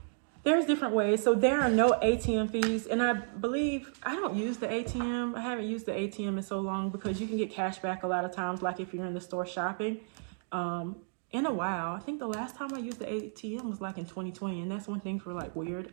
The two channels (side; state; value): left; silent; digital silence